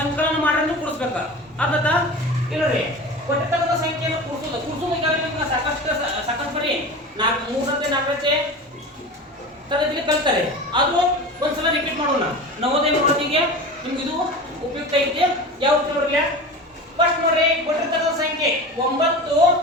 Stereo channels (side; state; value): both; normal; correlation 0.31